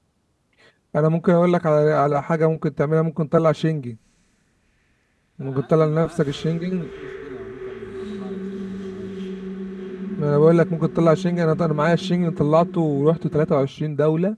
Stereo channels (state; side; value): identical; both; correlation 1.00